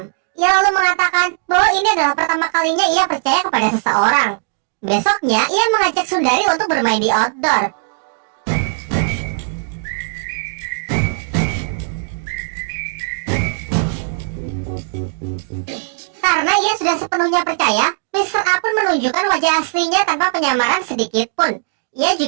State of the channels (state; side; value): silent; left; digital silence